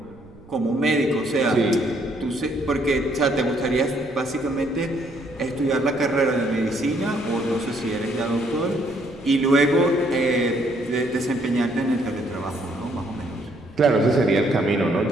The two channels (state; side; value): noise; right; rumble, 23 dB below the sound